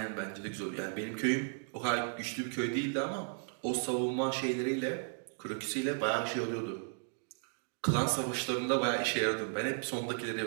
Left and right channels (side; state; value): left; silent; digital silence